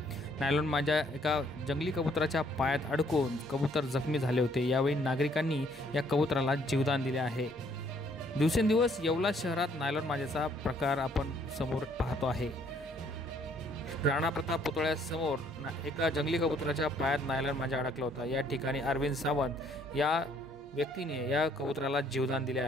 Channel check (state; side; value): normal; both; correlation 0.64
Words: नायलॉन मांजा एका जंगली कबुतराच्या पायात अडकून कबूतर जखमी झाले होते। यावेळी नागरिकांनी या कबुतराला जीवदान दिले आहे। दिवसेंदिवस येवला शहरात नायलॉन मांजाचा प्रकार आपण समोर पाहतो आहे। राणा प्रताप पुतळ्यासमोर एका जंगली कबुतराच्या पायात नायलॉन मांजा अडकला होता। या ठिकाणी अरविंद सावंत या व्यक्तीने या कबुतराला जीवदान दिले